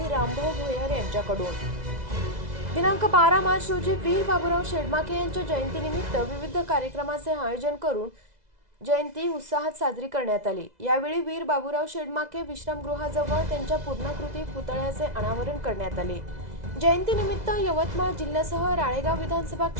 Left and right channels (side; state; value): left; late; 2.0 ms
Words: रामभाऊ भोयर यांच्याकडून। दिनांक 12 मार्च रोजी वीर बाबूराव शेडमाके यांच्या जयंतीनिमित्त विविध कार्यक्रमाचे आयोजन करून जयंती उत्साहात साजरी करण्यात आली। यावेळी वीर बाबूराव शेडमाके विश्रामगृहाजवळ त्यांच्या पूर्णाकृती पुतळ्याचे अनावरण करण्यात आले। जयंतीनिमित्त यवतमाळ जिल्ह्यासह राळेगाव विधानसभा